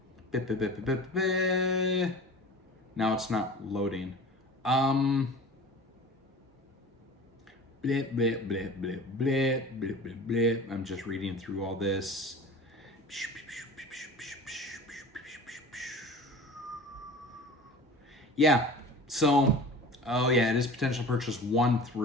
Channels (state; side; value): normal; both; correlation 0.38